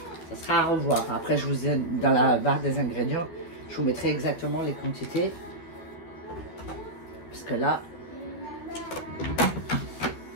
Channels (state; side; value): late; right; 13 ms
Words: ça sera à revoir. Après, je vous ai dans la barre des ingrédients, je vous mettrai exactement les quantités. Parce que là,